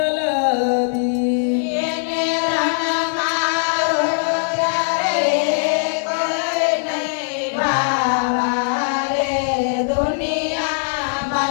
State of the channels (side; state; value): right; silent; digital silence